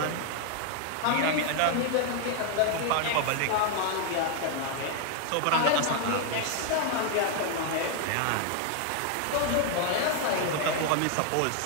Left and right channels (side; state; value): both; different; correlation 0.00